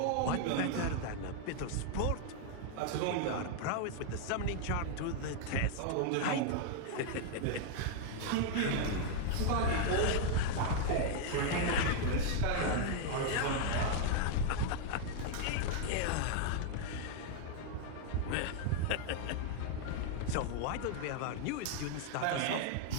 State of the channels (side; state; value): both; different; correlation 0.00